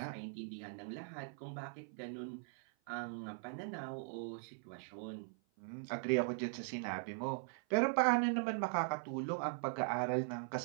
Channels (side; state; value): left; silent; 51 dB below the other